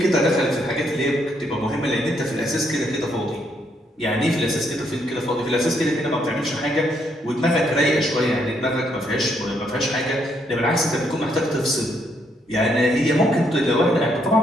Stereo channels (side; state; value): both; normal; correlation 0.73